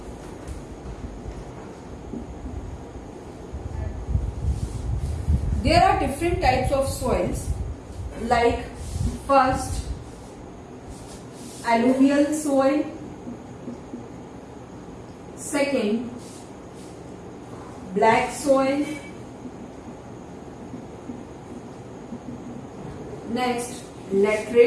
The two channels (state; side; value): identical; both; correlation 1.00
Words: There are different types of soils, like first alluvial soil, second black soil, next